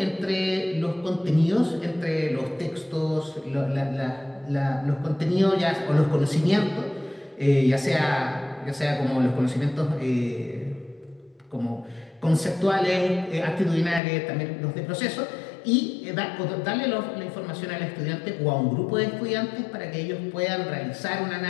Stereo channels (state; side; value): drops out; right; at 14.0 s